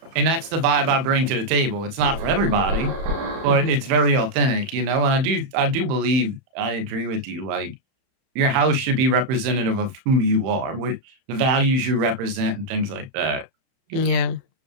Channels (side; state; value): left; late; 31 ms